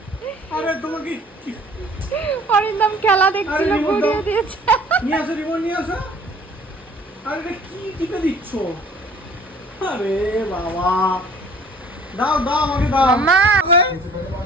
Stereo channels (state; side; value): normal; both; correlation 0.52